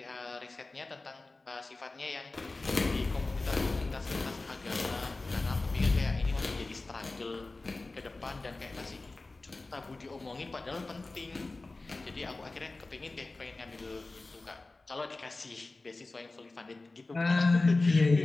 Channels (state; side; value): quieter; right; 3.3 dB